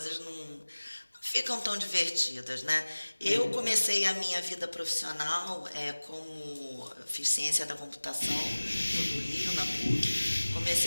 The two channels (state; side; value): inverted; both; correlation -1.00